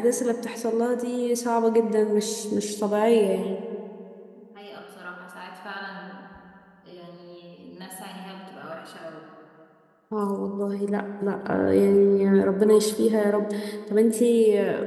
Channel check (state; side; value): identical; both; correlation 1.00